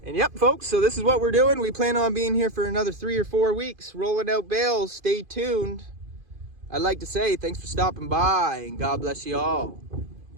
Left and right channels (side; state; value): left; late; 2.5 ms